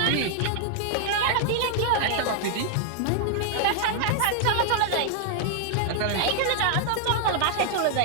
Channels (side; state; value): both; different; correlation -0.01